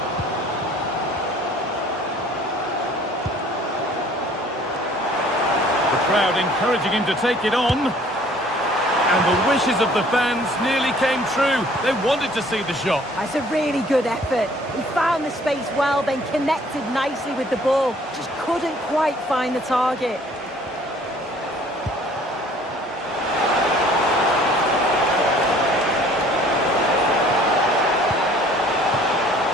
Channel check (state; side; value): normal; both; correlation 0.55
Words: The crowd encouraging him to take it on. And the wishes of the fans nearly came true. They wanted to see the shot. That's a really good effort. He found the space well, then connected nicely with the ball. Just couldn't quite find the target.